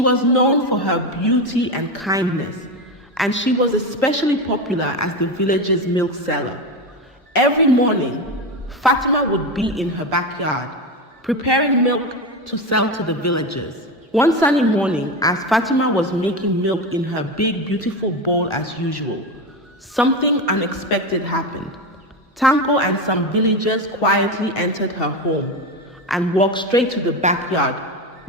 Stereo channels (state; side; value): normal; both; correlation 0.18